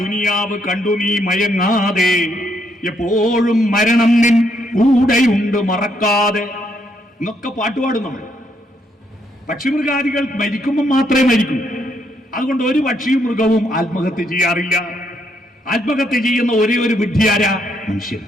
ദുനിയാവ് കണ്ടു നീ മയങ്ങാതെ, എപ്പോഴും മരണം നിൻ കൂടെയുണ്ട് മറക്കാതെ എന്നൊക്കെ പാട്ടുപാടും നമ്മൾ. പക്ഷിമൃഗാദികൾ മരിക്കുമ്പോൾ മാത്രമേ മരിക്കൂ. അതുകൊണ്ട് ഒരു പക്ഷിയും മൃഗവും ആത്മഹത്യ ചെയ്യാറില്ല. ആത്മഹത്യ ചെയ്യുന്ന ഒരേ ഒരു വിഡ്ഢിയാരാ? മനുഷ്യൻ.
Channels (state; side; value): normal; both; correlation 0.74